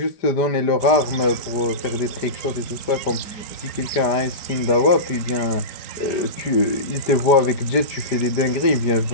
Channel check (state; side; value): late; right; 5.0 ms